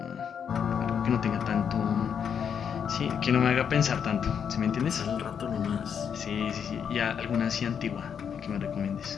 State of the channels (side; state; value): right; quieter; 7.6 dB